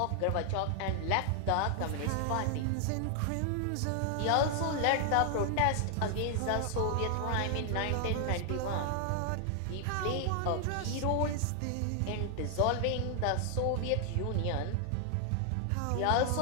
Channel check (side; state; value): both; different; correlation 0.00